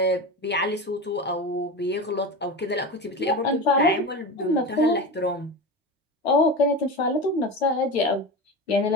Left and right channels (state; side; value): normal; both; correlation 0.25